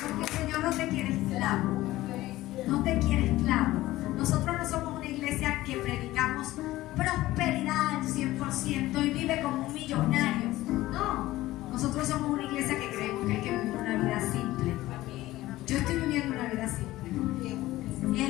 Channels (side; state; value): right; quieter; 16.7 dB